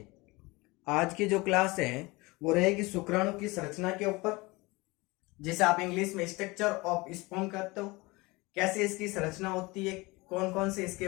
आज की जो क्लास है वो रहेगी शुक्राणु की संरचना के ऊपर, जिसे आप इंग्लिश में स्ट्रक्चर ऑफ स्पर्म कहते हो। कैसे इसकी संरचना होती है, कौन कौन से इसके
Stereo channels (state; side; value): quieter; right; 23.6 dB